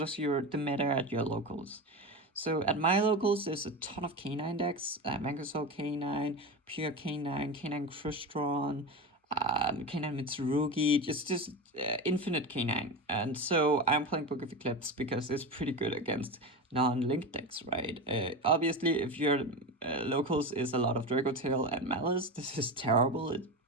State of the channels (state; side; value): normal; both; correlation 0.22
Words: the meta at your locals. So at my locals, there's a ton of K9 decks, Mangosaur K9, Pure K9, K9 Crystron, K9 Mitsurugi, just infinite K9. And so I'm playing Book of Eclipse because it's pretty good against non-linked decks, right? Obviously, if your locals is a lot of Draco Tail and Malice, this is terrible. It's